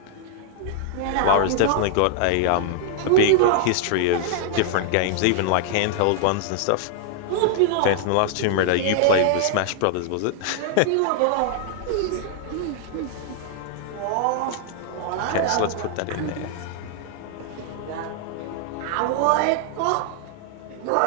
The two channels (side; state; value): both; different; correlation -0.01